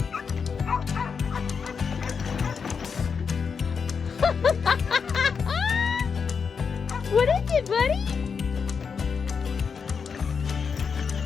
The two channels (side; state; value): right; quieter; 5.9 dB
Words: What is it, buddy?